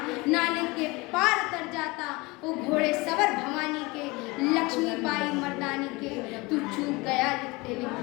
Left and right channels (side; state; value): right; quieter; 24.1 dB